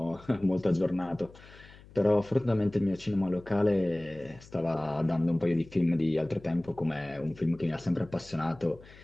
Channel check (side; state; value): left; noise; hum, 22 dB below the sound